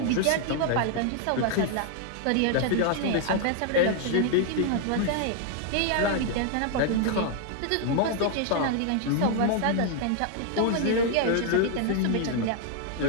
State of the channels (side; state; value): both; different; correlation 0.00